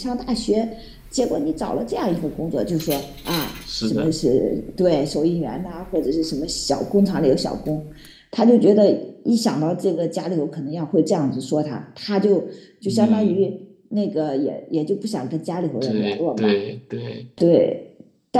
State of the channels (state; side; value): identical; both; correlation 1.00